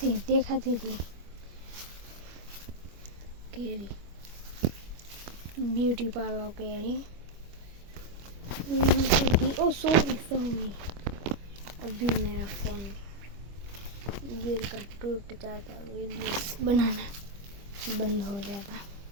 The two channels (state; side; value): late; left; 25 ms